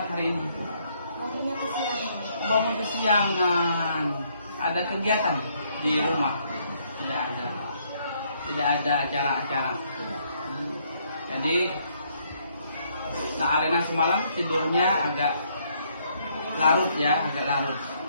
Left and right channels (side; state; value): both; inverted; correlation -0.70